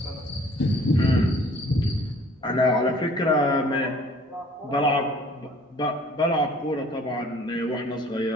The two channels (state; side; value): normal; both; correlation 0.54